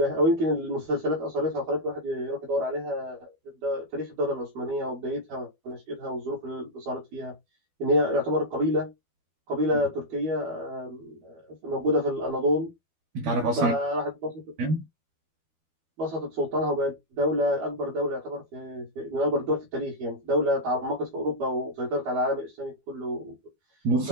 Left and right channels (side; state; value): left; late; 12 ms